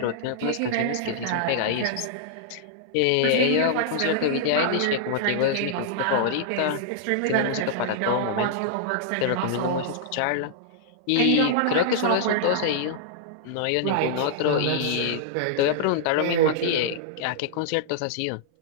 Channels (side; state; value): both; different; correlation -0.01